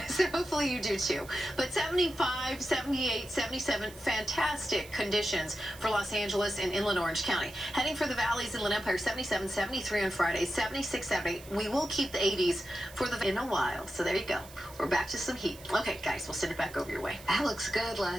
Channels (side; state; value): right; noise; hiss, 19 dB below the sound